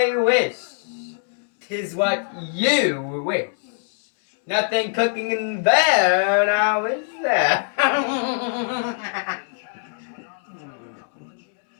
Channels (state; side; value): silent; right; digital silence